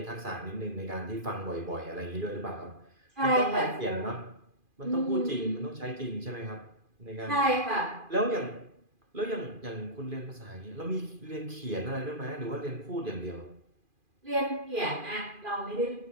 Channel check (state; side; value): late; left; 2.4 ms